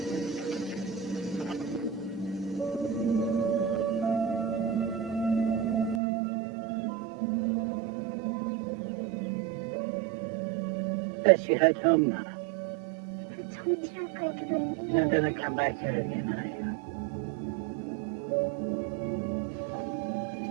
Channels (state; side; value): drops out; left; at 6.0 s